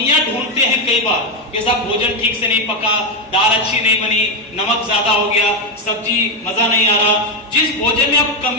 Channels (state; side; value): normal; both; correlation 0.07